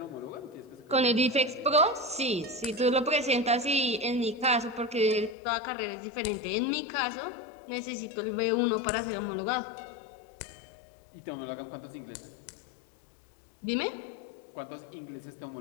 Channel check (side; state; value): right; drops out; at 5.4 s